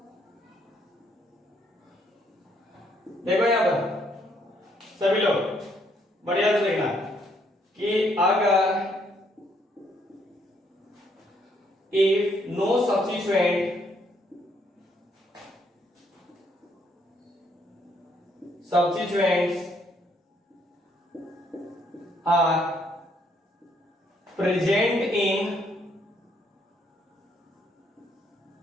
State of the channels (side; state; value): both; normal; correlation 0.70